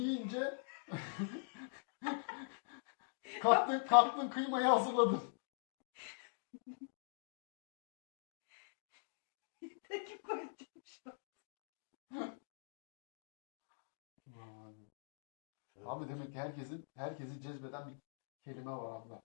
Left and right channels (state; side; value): silent; right; digital silence